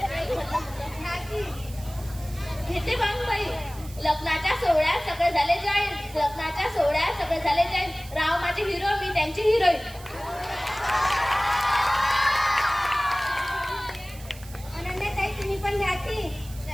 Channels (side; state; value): right; noise; hiss, 19 dB below the sound